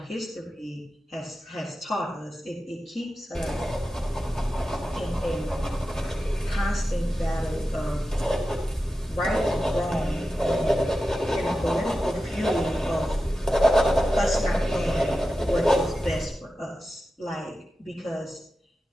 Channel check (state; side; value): normal; both; correlation 0.92